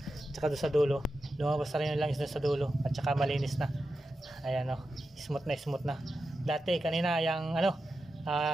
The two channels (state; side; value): normal; both; correlation 0.90